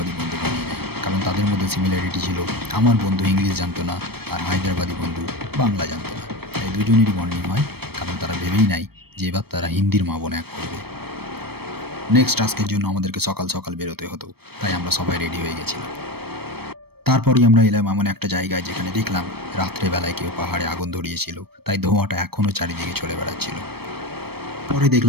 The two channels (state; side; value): late; left; 0.96 ms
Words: বন্ধু বানিয়ে নেয়, কারণ তাদের মধ্যে সিমিলারিটি ছিল। আমার বন্ধু ইংলিশ জানতো না আর হায়দ্রাবাদি বন্ধু বাংলা জানতো না, তাই দুজনেরই বন্ডিং হয়, কারণ তারা ভেবেই নাই যে এবার তারা হিন্দির মা বোন এক করবে। নেক্সট টাস্কের জন্য আমাদেরকে সকাল সকাল বেরোতে হতো, তাই আমরা সবাই রেডি হয়ে গেছিলাম। তারপরই আমরা এলাম এমন একটা জায়গায় যেখানে দেখলাম রাত্রেবেলায় কেউ পাহাড়ে আগুন ধরিয়েছিল, তাই ধোঁয়াটা এখনও চারিদিকে চলে বেড়াচ্ছিল। পরে